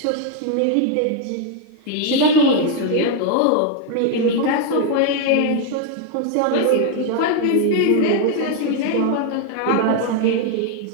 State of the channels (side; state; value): both; different; correlation 0.01